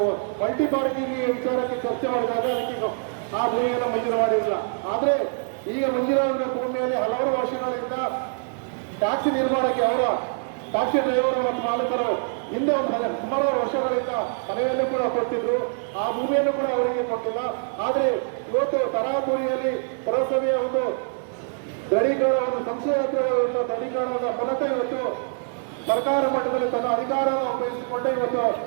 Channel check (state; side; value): silent; left; digital silence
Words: ಮಲ್ಟಿ ಪಾರ್ಕಿಂಗ್ ವಿಚಾರಕ್ಕೆ ಚರ್ಚೆ ಮಾಡಿದಾಗ ಅದಕ್ಕೆ ಆ ಭೂಮಿಯನ್ನು ಮಂಜೂರು ಮಾಡಿರಲಿಲ್ಲ. ಆದರೆ ಈಗ ಮಂಜೂರಾದ ಭೂಮಿಯಲ್ಲಿ ಹಲವಾರು ವರ್ಷಗಳಿಂದ ಟ್ಯಾಕ್ಸಿ ನಿರ್ಮಾಣಕ್ಕೆ ಅವರ ಟ್ಯಾಕ್ಸಿ ಡ್ರೈವರ್ ಮತ್ತು ಮಾಲೀಕರು ಹಿಂದೆ ಒಂದು ಸುಮಾರು ವರ್ಷಗಳಿಂದ ಮನೆಯನ್ನು ಕೂಡ ಕೊಟ್ಟಿದ್ರು. ಆ ಭೂಮಿಯನ್ನು ಕೂಡ ಅವರಿಗೆ ಕೊಟ್ಟಿಲ್ಲ. ಆದರೆ ಇವತ್ತು ತರಾತುರಿಯಲ್ಲಿ ಪುರಸಭೆಯ ಒಂದು ದೃಢೀಕರಣ, ಒಂದು ಸಂಶಯಾಸ್ಪದ ದೃಢೀಕರಣದ ಮೂಲಕ ಇವತ್ತು ಸರ್ಕಾರ ಮಟ್ಟದಲ್ಲಿ ತನ್ನ ಅಧಿಕಾರವನ್ನು ಉಪಯೋಗಿಸಿಕೊಂಡು ಇವತ್ತು